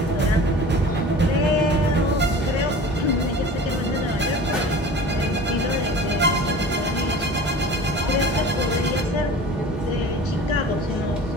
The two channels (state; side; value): normal; both; correlation 0.39